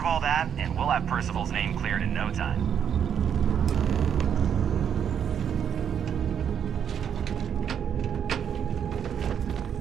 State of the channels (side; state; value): left; quieter; 8.3 dB